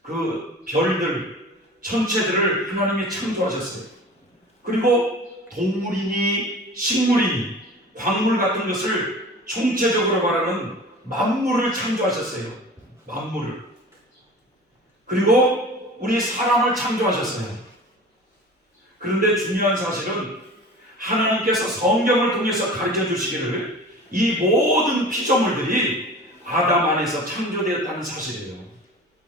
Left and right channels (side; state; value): both; normal; correlation 0.39